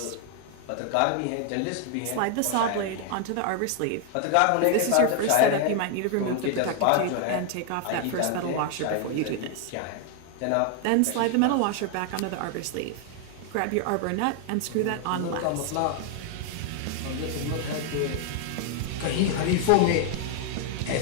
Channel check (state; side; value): different; both; correlation 0.00